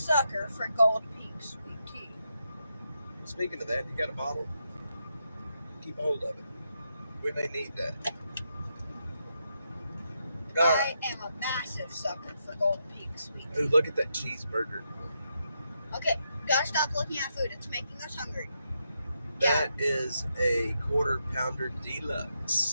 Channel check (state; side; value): inverted; both; correlation -0.82